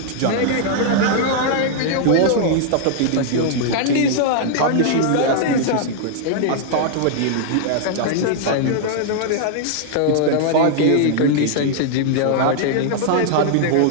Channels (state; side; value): different; both; correlation -0.01